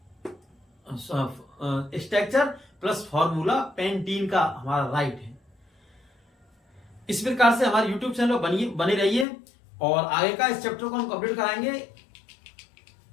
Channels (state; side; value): drops out; right; at 9.2 s